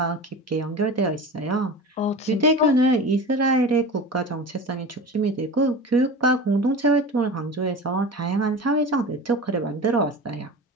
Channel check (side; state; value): both; normal; correlation 0.32